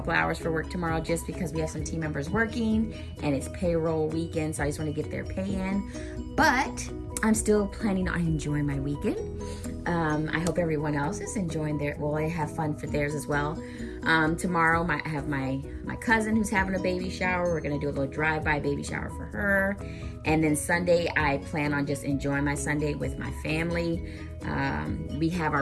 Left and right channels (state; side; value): identical; both; correlation 1.00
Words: hours for work tomorrow just because we have some team members working and it's payroll weekend, so I just want to get their pay in, but I'm still planning on enjoying my weekend. I hope everyone else is enjoying I have fun for theirs as well. Tomorrow I have my cousin who's having a baby shower. We're gonna do a little drive-by baby shower for her. And then Sunday, I plan on just enjoying my Sunday with my family. We have